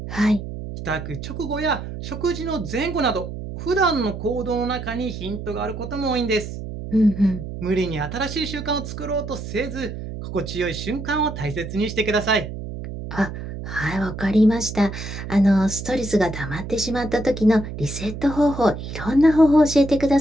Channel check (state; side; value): noise; right; hum, 8 dB below the sound